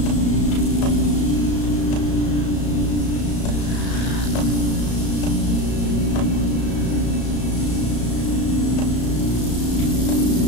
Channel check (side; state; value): right; late; 34 ms